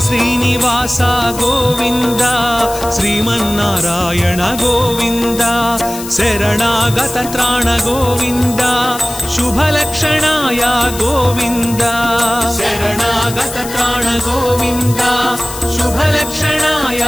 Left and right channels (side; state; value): left; noise; hiss, 11 dB below the sound